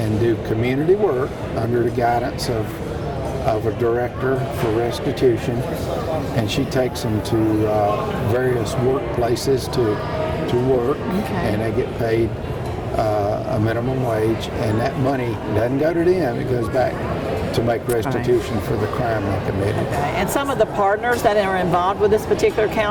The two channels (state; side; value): identical; both; correlation 1.00